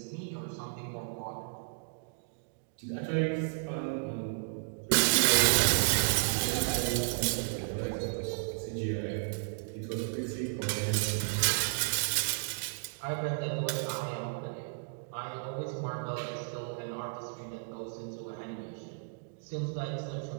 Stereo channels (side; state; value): left; silent; digital silence